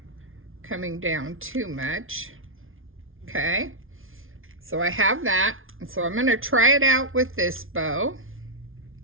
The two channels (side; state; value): left; late; 0.59 ms